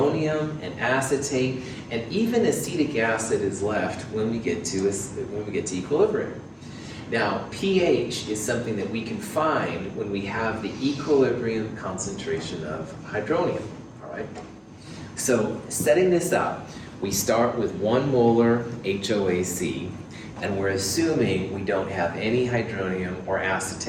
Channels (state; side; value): identical; both; correlation 1.00